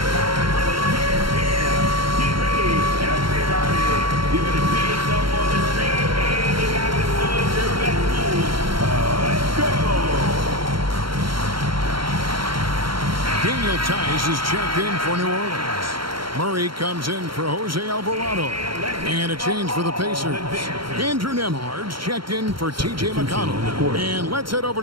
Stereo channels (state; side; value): late; left; 0.73 ms